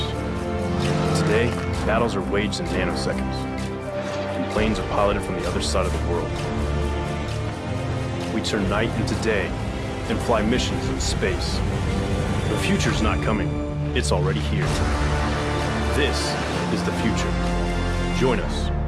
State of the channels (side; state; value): both; identical; correlation 1.00